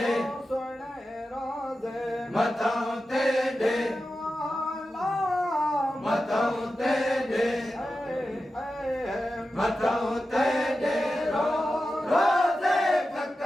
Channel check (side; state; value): both; normal; correlation 0.92